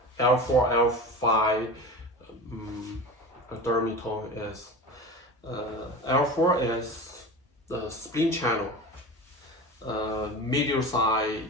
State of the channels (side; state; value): both; normal; correlation 0.30